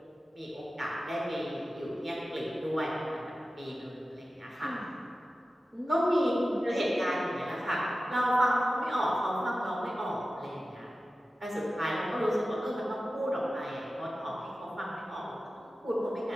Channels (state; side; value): normal; both; correlation 0.94